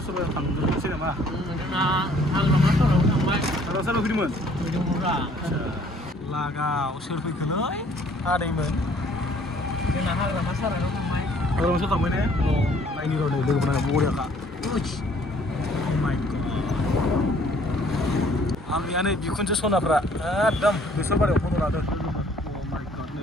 सबायाव थांनोसै नामा जोंना हाग्रामा साराव थांबाय हाग्रामा साराव फैदोंमोन फैदोंमोनब्रा लागाव सोर फैखोलै आदैमोन जोंना हाग्रामा साराव थांबाय हाग्रामा साराव थांबाय ने नायनि र' नै लोगोफोरा बरियाखा माइ गड आंनिया नै बिखुनजो सनाफ्रा एकदम बेसर बारियाव फट' लादों माइ गड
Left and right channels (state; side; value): normal; both; correlation 0.59